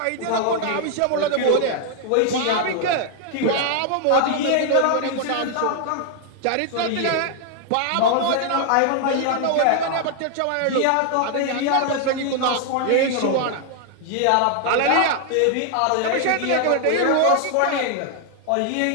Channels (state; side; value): different; both; correlation 0.00